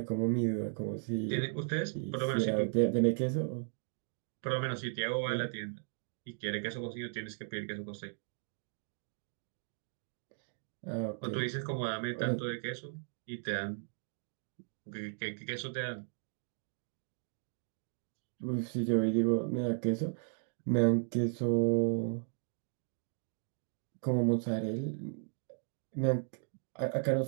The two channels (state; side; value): silent; left; digital silence